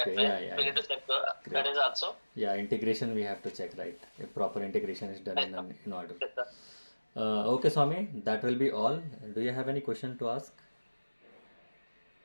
Okay. way, Yeah. we need to check that Great. is also. Yeah, integration we have to check, right? If proper integration is done Yes, sir. in order. Yes, sir. Okay, Swami, that will be all. Do you have any question to ask?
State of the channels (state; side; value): inverted; both; correlation -1.00